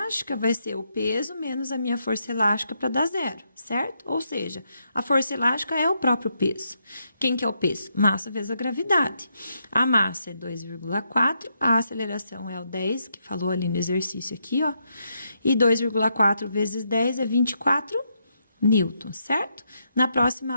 vai ser o peso menos a minha força elástica para dar zero, certo? Ou seja, a força elástica é o próprio peso. Quem que é o peso? Massa vezes a gravidade. A massa é 2,4, a aceleração é o 10, que falou ali no exercício aqui, ó. E 2,4 vezes 10 é 24 newtons, certo? Na próxima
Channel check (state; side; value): inverted; both; correlation -0.79